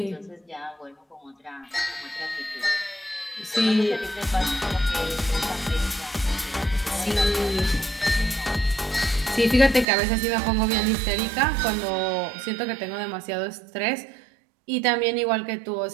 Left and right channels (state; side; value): drops out; left; at 9.9 s